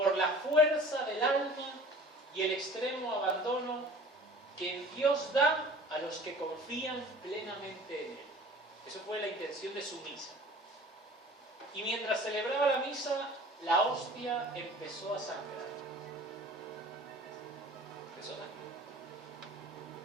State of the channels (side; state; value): both; normal; correlation 0.46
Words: la fuerza del alma y el extremo abandono que Dios da a los que confían plenamente en Él. Eso fue la intención de su misa. Y mientras celebraba la misa, la hostia empezó a sangrar.